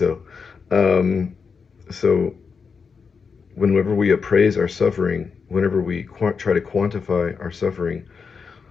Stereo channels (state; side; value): quieter; right; 5.5 dB